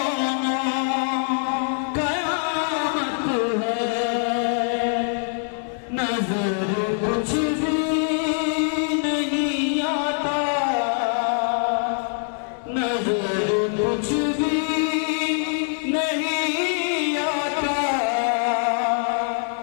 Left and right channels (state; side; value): silent; right; 63 dB below the other